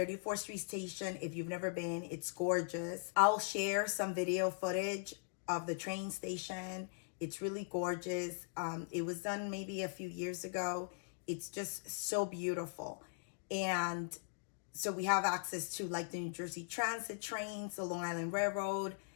Street station, if you've never been, it's gorgeous. I'll share some video footage of the train station. It's really gorgeous. It was done maybe a few years ago. It's just so beautiful. And so we have access to like the New Jersey Transit trains, the Long Island Railroad,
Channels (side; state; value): right; silent; digital silence